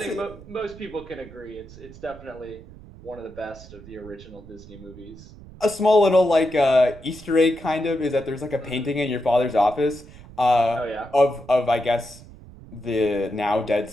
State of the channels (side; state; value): right; noise; rumble, 18 dB below the sound